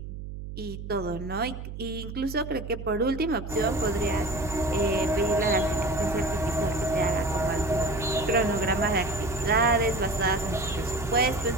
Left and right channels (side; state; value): right; noise; hum, 9 dB below the sound